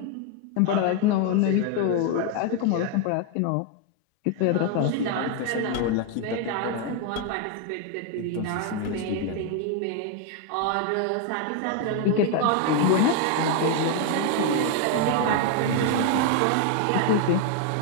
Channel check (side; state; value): both; different; correlation 0.01